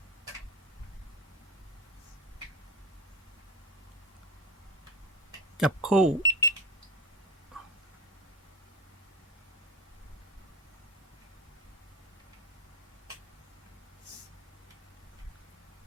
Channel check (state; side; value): normal; both; correlation 0.21